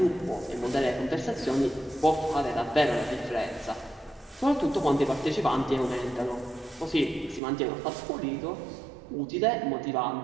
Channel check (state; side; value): drops out; left; at 7.4 s